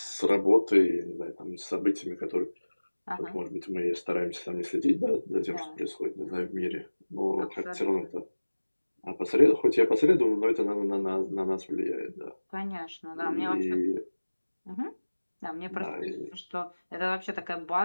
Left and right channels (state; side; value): inverted; both; correlation -1.00